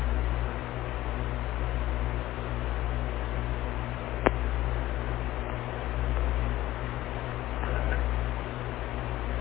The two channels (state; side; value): quieter; right; 15.6 dB